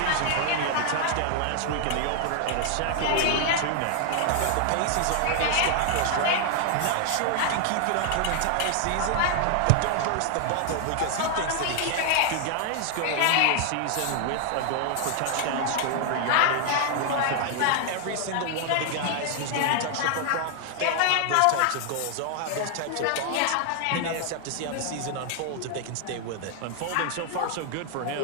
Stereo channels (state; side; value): different; both; correlation 0.00